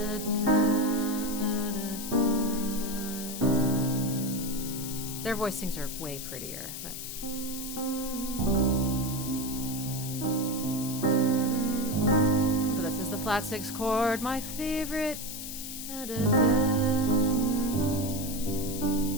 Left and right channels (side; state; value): left; noise; hiss, 8 dB below the sound